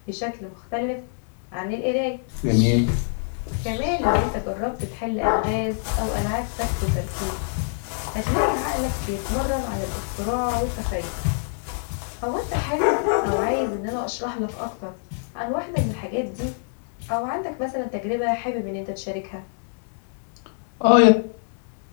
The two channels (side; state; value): right; silent; digital silence